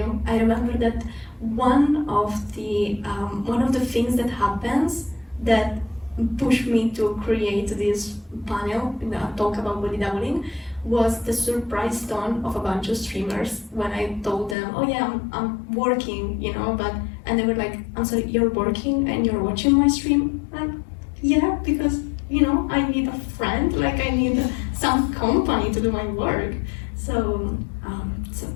I remember that one of the things that happens that pushed me to create this panel, talk about body doubling, was the surprise tone of a bunch of streamers when I told them, oh yeah, I'm working, you know, and they were like, I'm sorry, you're working and you're watching my stream? Like, yeah, because, you know, I need a friend, like I need some company to do my work. So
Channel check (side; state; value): right; drops out; at 14.6 s